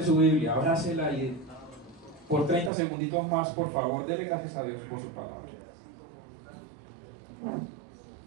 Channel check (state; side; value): drops out; left; at 2.7 s